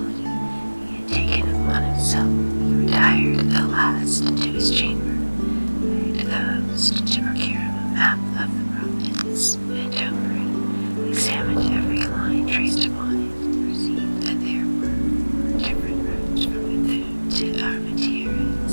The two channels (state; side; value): inverted; both; correlation -1.00